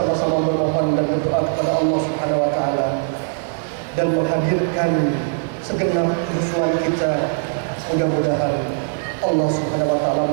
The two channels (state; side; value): silent; left; digital silence